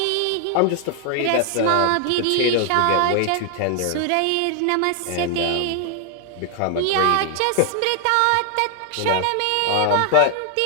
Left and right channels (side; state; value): both; different; correlation 0.00